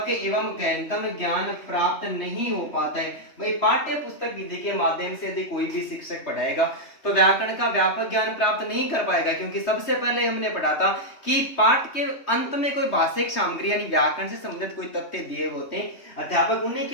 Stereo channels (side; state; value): right; late; 3.2 ms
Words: एवं गहनतम ज्ञान प्राप्त नहीं हो पाता है। भाई पाठ्य पुस्तक विधि के माध्यम से यदि कोई भी शिक्षक पढ़ाएगा तो व्याकरण का व्यापक ज्ञान प्राप्त नहीं कर पाएगा, क्योंकि सबसे पहले हमने पढ़ा था कि पाठ के अंत में कोई भाषिक सामग्री यानी व्याकरण से संबंधित कोई तथ्य दिए होते हैं, अध्यापक उन्हीं